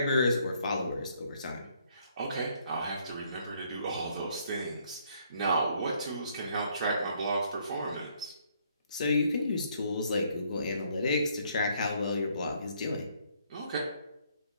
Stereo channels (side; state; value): both; inverted; correlation -0.67